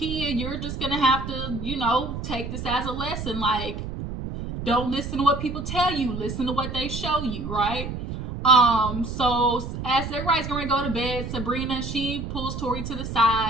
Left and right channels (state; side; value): noise; right; rumble, 6 dB below the sound